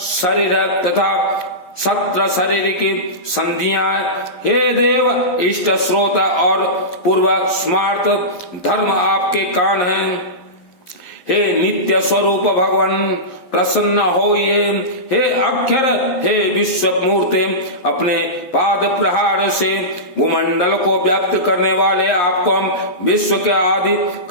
तथा सत्र शरीर की संधियां। हे देव इष्ट स्रोत और पूर्व स्मार्त धर्म आपके कान हैं। हे नित्य स्वरूप भगवान प्रसन्न होइए। हे अक्षर, हे विश्व मूर्ति, अपने पाद प्रहार से भूमंडल को व्याप्त करने वाले आपको हम विश्व के आदि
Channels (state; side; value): late; right; 11 ms